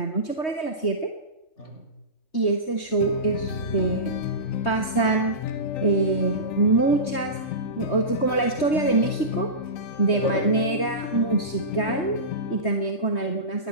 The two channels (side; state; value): right; late; 3.2 ms